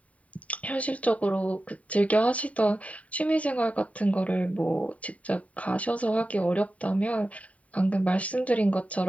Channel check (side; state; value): right; late; 0.068 ms